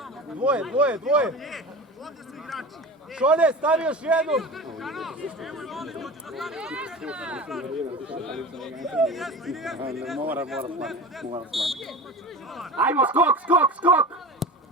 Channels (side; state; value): both; normal; correlation 0.32